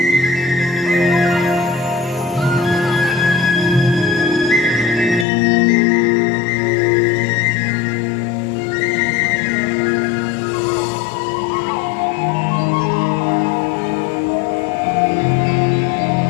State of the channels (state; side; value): drops out; right; at 5.2 s